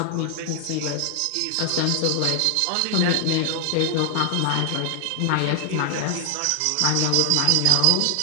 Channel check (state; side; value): different; both; correlation 0.00